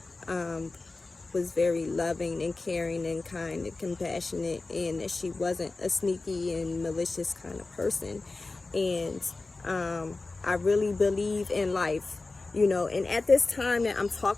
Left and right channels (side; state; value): right; quieter; 3.5 dB